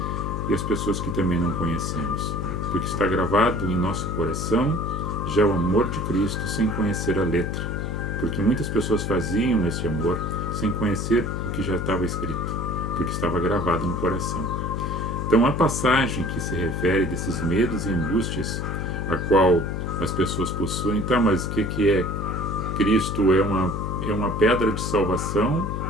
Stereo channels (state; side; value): noise; left; hum, 3 dB below the sound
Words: e as pessoas que também não conhecemos. Porque está gravado em nosso coração já o amor de Cristo sem conhecer a letra. Porque muitas pessoas faziam esse amor sem conhecer o que já estava escrito, porque estava gravado no coração. Então a passagem que se refere desses medos e angústias a qual as pessoas possuem, tá, mas o que é Cristo? É uma pedra de salvação